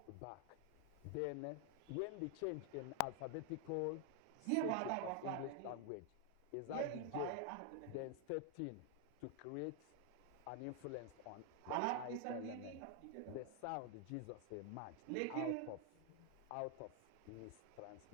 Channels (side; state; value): both; different; correlation 0.00